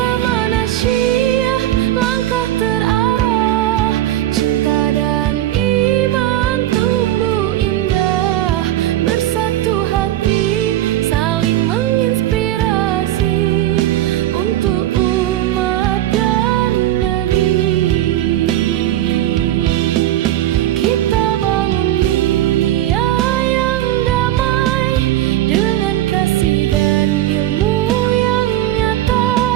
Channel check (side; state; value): left; quieter; 13.8 dB